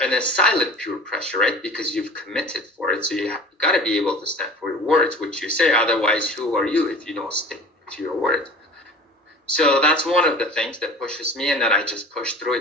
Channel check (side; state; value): both; normal; correlation 0.41